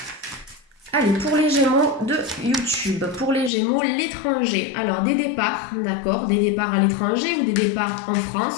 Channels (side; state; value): right; drops out; at 3.5 s